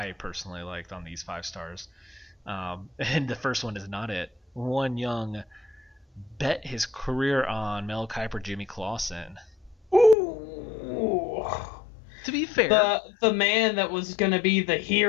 personally liked on these 5 stars. And the first one is not it. One young bet his career on Mel Kiper, Jimmy Clausen. Ooh. To be fair, The man that was going to be the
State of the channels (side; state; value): right; drops out; at 10.2 s